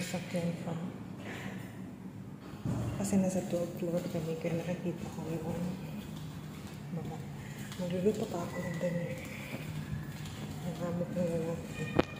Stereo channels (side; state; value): both; identical; correlation 1.00